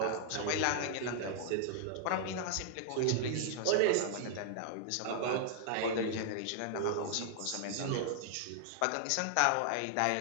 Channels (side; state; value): both; different; correlation -0.01